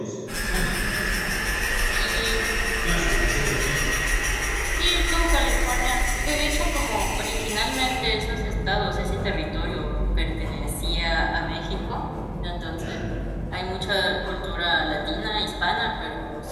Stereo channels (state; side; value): identical; both; correlation 1.00